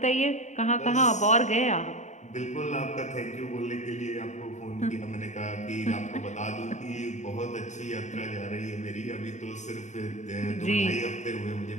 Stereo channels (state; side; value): late; right; 0.34 ms